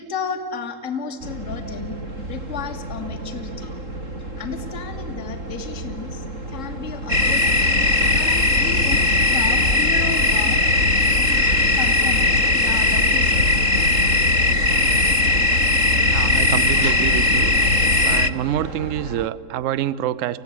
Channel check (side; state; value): left; late; 3.7 ms